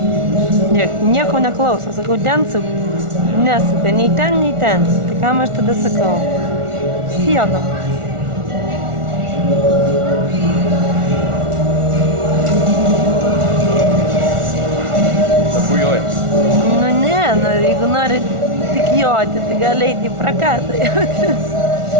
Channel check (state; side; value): late; left; 1.4 ms